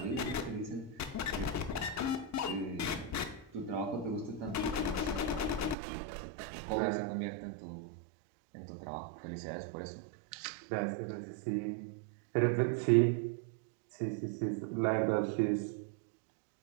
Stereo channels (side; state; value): left; drops out; at 5.8 s